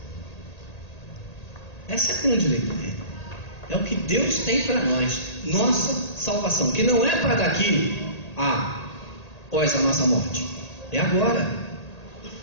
Essa é a grande lei do reino. É o que Deus tem para nós, nossa salvação, que não é para daqui após a nossa morte, é agora.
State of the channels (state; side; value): late; right; 1.8 ms